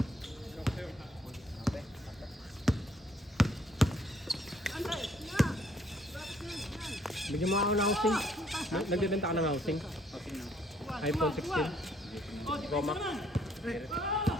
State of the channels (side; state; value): both; normal; correlation 0.65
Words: Bigyan mo ako ng housing. Nagbibenta ka ng housing. iPhone 16. Pro Max.